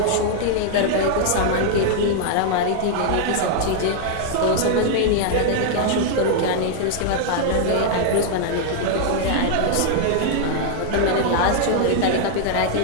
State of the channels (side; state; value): both; different; correlation 0.00